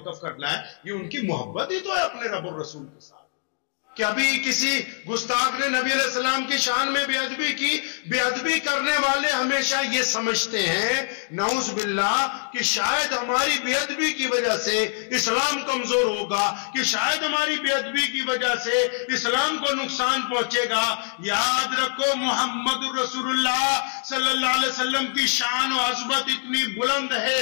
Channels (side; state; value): right; silent; digital silence